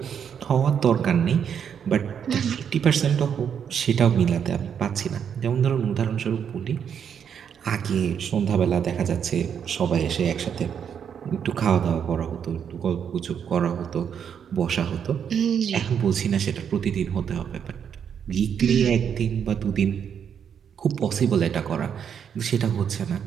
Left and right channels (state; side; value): quieter; left; 7.9 dB